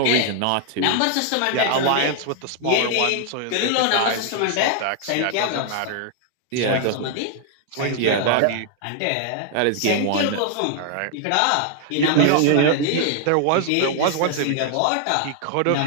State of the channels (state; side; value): different; both; correlation 0.00